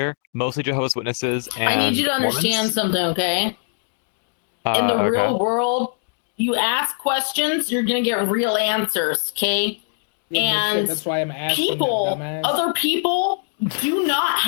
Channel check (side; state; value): right; silent; 64 dB below the other